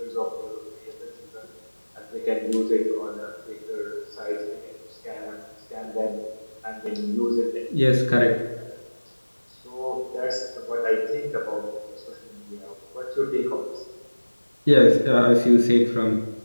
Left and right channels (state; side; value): inverted; both; correlation -1.00